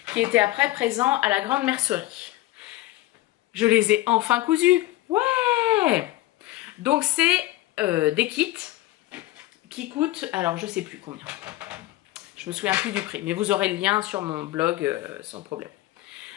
qui étaient après présents à la grande mercerie. Je les ai enfin cousus. Ouais! Donc c'est des kits qui coûtent, alors je sais plus combien. Je me souviens plus du prix, mais vous aurez le lien sur mon blog sans problème.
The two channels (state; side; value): quieter; right; 17.1 dB